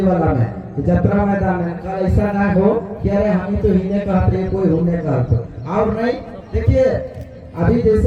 वाला में कि यात्रा मैदान है, कल ऐसा ना हो कि अरे हम तो हिने कहते कोई होने कहते और नहीं। देखिए अभी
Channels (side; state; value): both; identical; correlation 1.00